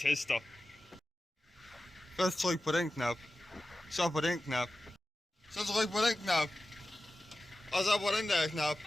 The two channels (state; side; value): normal; both; correlation 0.94